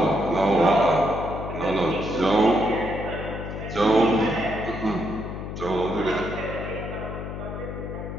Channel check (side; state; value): left; noise; hum, 7 dB below the sound